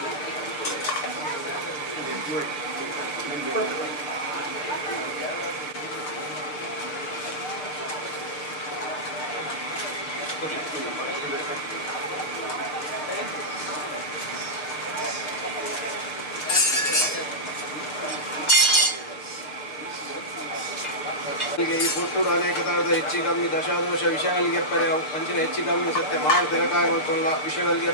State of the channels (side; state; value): right; late; 6.6 ms